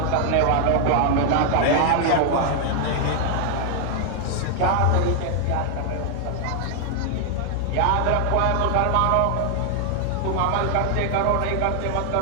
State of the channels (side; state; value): both; different; correlation 0.00